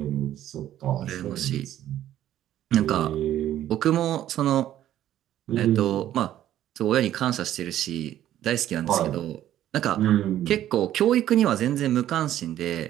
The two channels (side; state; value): left; quieter; 12.3 dB